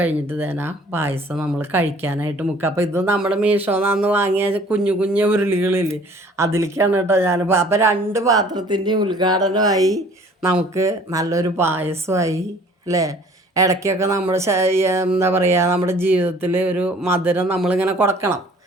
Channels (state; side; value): normal; both; correlation 0.53